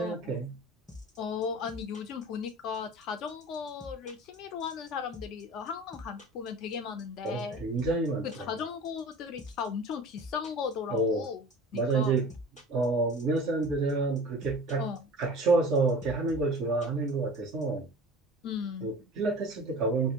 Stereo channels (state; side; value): normal; both; correlation 0.40